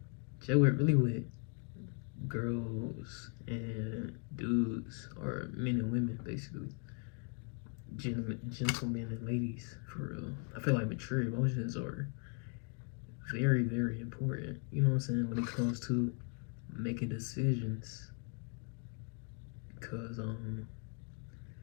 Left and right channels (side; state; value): right; quieter; 39.5 dB